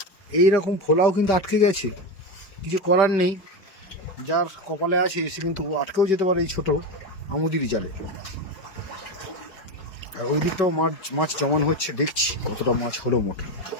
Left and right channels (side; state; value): right; late; 5.3 ms